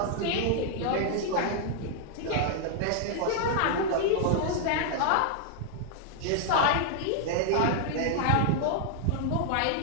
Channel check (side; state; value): both; different; correlation -0.01